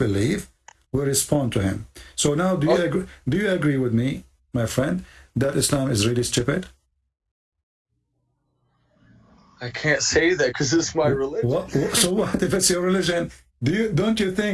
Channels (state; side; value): identical; both; correlation 1.00